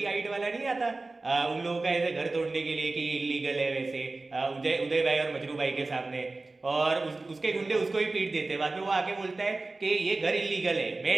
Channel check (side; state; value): left; quieter; 3.3 dB